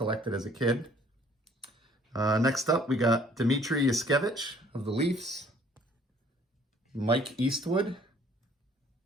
as a kid. Next up, we got Dmitry Yushkevich of the Leafs, Mike Eastwood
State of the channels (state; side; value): normal; both; correlation 0.58